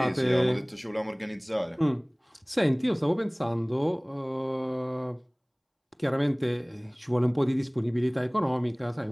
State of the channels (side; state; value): both; identical; correlation 1.00